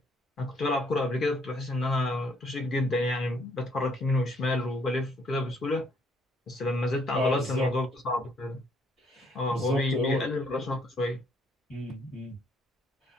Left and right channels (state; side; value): normal; both; correlation 0.67